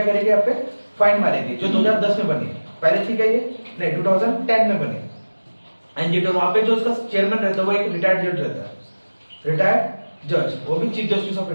करेगी? आप पे फाइन मारेगी, जो 2010 में बनी। पहले ठीक है ये नहीं, 2010 में बनी एनजीटी। वहां पे जो उसका चेयरमैन रहता है वो एक रिटायर्ड जज रहता है, रिटायर्ड जज, वो भी चीफ जस्टिस ऑफ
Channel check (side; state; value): both; inverted; correlation -1.00